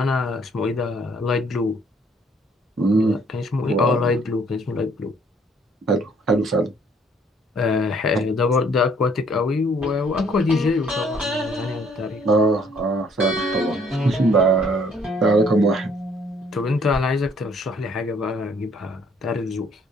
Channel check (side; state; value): both; normal; correlation 0.63